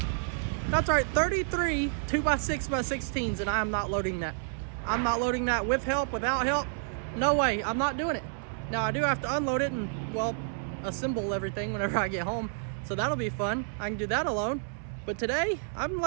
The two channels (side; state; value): left; silent; 58 dB below the other